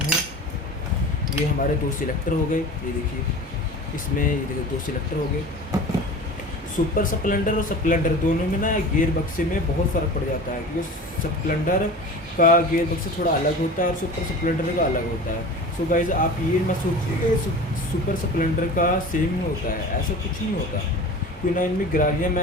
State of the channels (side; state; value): both; normal; correlation 0.36